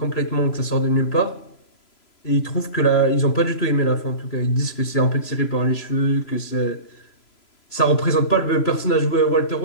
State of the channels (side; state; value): right; late; 3.0 ms